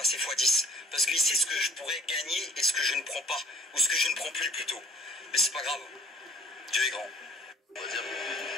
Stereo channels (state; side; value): normal; both; correlation 0.55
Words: x 10. Parce qu'il sait ce que je pourrais gagner et ce que je ne prends pas. Ou ce que je ne prends plus plutôt. Mais c'est pas grave. Dieu est grand. On va dire,